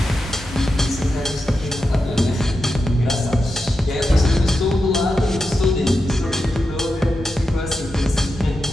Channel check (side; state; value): both; normal; correlation 0.89